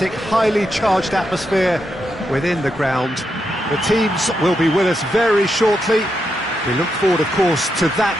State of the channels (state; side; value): normal; both; correlation 0.83